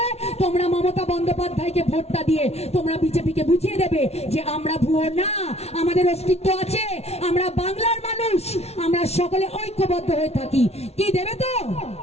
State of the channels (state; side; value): late; right; 0.31 ms